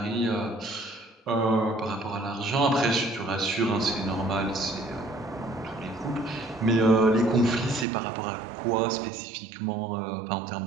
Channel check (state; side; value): drops out; left; at 7.9 s